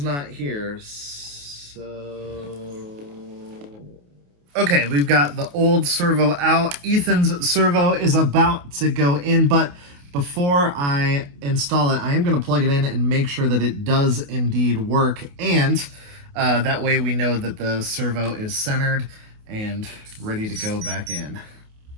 not here, so... Okay, we've got the old servo out. Ethan's servo is about to go in, but before I install it, I am going to plug it in and make sure that it does indeed work, and that way we know that the servo is centered and ready to go back in.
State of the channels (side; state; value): left; late; 28 ms